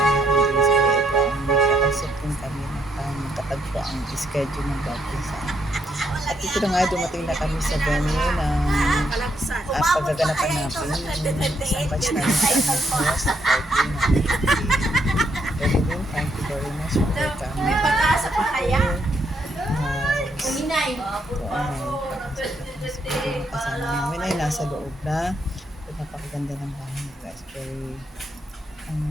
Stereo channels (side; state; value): both; normal; correlation 0.74